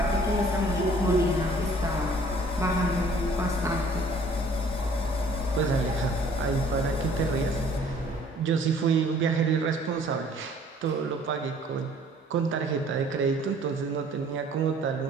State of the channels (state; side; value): normal; both; correlation 0.55